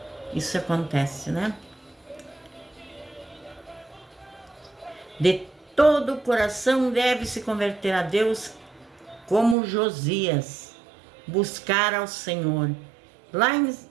Isso acontece, né? De todo o coração deve se converter a Deus, como Josias, buscar ao Senhor. Lá em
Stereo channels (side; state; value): left; drops out; at 9.6 s